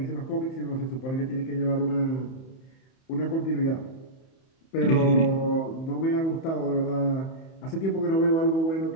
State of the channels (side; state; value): right; late; 31 ms